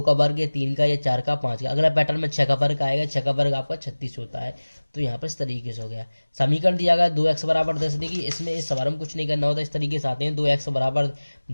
का वर्ग है, 3 का, ये 4 का, 5 का। अगला पैटर्न में 6 का वर्ग आएगा, 6 का वर्ग आपका 36 होता है। तो यहाँ पर इस तरीके से हो गया। समीकरण दिया गया 2x बराबर 10, देखिए इसमें इस सवाल में कुछ नहीं करना होता, इस तरीके से आते हैं। 2x बराबर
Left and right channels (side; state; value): both; inverted; correlation -1.00